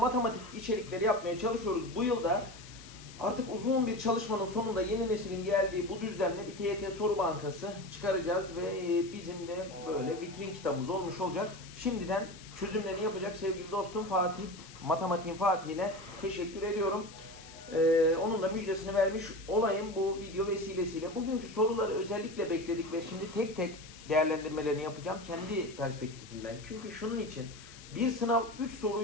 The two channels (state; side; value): noise; left; hiss, 18 dB below the sound